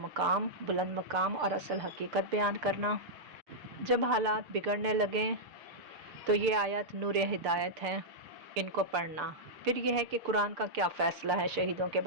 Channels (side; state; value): left; late; 6.8 ms